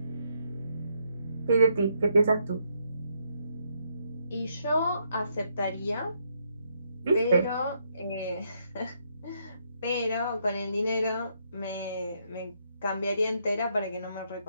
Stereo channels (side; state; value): both; inverted; correlation -0.75